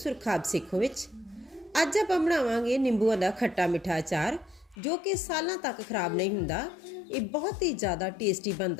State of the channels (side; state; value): right; drops out; at 4.8 s